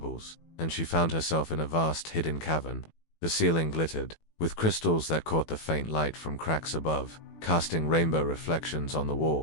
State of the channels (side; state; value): right; late; 18 ms